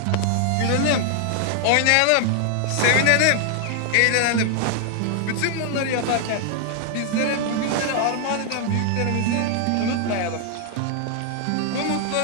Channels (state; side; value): different; both; correlation 0.00